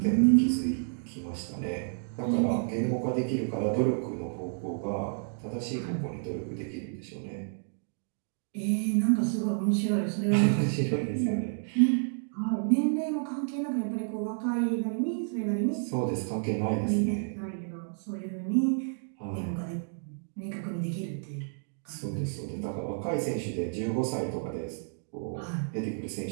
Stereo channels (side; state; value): left; silent; digital silence